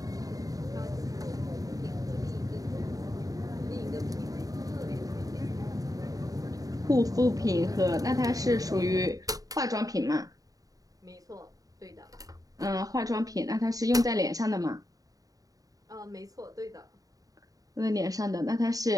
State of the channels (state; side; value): late; left; 0.17 ms